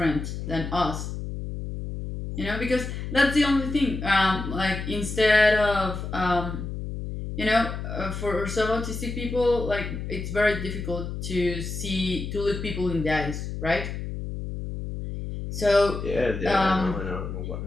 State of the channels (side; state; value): left; noise; hum, 6 dB below the sound